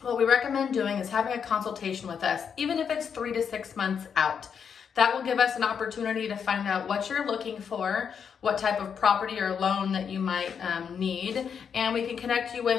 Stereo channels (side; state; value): right; quieter; 7.0 dB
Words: what we recommend doing is having a consultation with us, even if it's 3 to 6 months out. That will give us an opportunity to find out what you're looking for, what type of property or loan that you might need, and we can connect you